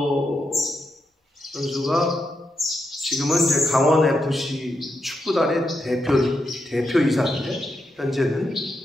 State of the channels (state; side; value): normal; both; correlation 0.84